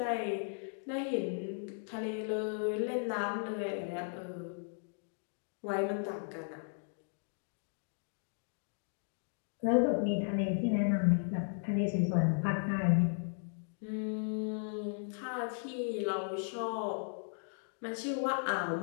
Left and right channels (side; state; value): right; silent; digital silence